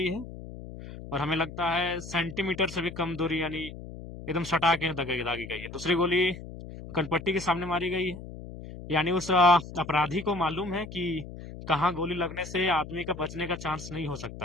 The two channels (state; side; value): noise; left; hum, 12 dB below the sound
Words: है। और हमें लगता है सेंटीमीटर से भी कम दूरी, यानी एकदम सटा के दागी दागी गई है। दूसरी गोली कनपट्टी के सामने मारी गई है, यानी उस अपराधी को मालूम है कि कहाँ गोली लगने से आदमी का बचने का चांस नहीं हो